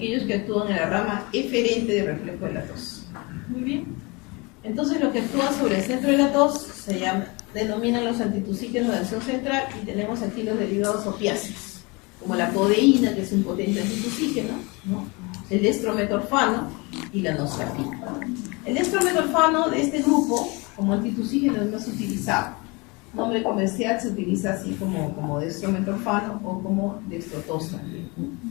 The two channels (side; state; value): right; quieter; 27.2 dB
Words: que actúan en la rama eferente del reflejo de la tos. Muy bien. Entonces los que actúan sobre el centro de la tos denominan los antitusígenos de acción central y tenemos aquí los derivados opiáceos, como la codeína, que es un potente antitusígeno, ¿no? El destrometorfano y la noscapina. El destrometorfano de este grupo, como antitusígeno, es más utilizado. Nombre comercial se utiliza así como destrometorfano o como dextrotosa.